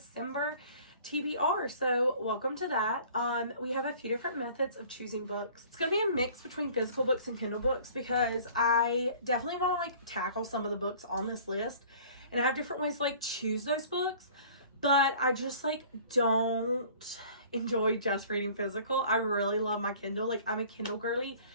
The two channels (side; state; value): both; inverted; correlation -0.49